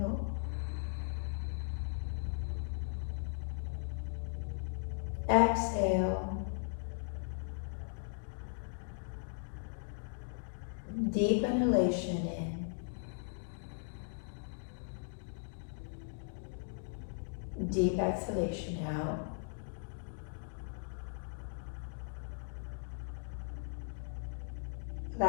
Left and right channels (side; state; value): right; silent; digital silence